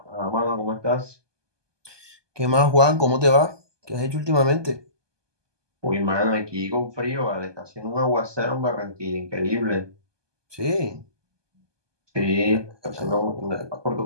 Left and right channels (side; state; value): left; late; 1.2 ms